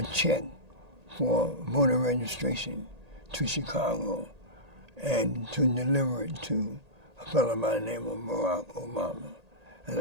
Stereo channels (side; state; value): left; late; 1.8 ms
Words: check for voter registration to Chicago and to deliver it to a fellow by the name of Barack Obama. And